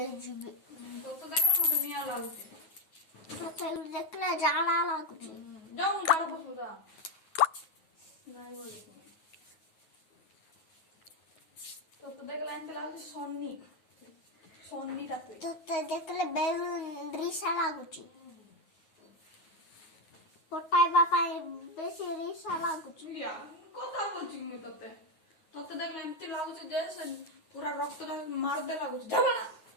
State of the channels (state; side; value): late; right; 9.4 ms